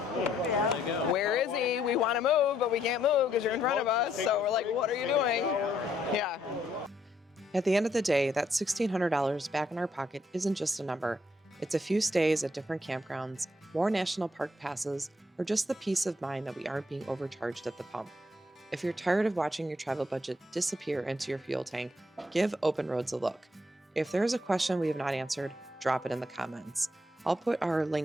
they go. where is he? We want to move, but we can't move because you're in front of us. So we're like, what are you doing? Yeah. At the end of the day, that $1,600 back in our pocket isn't just a number. It's a few stays at different campgrounds, more national park passes, or just the peace of mind that we aren't being overcharged at the pump. If you're tired of watching your travel budget disappear into your fuel tank, give Open Roads a look. If there is a question we have not answered, drop it in the comments. I'll put our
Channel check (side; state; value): both; normal; correlation 0.72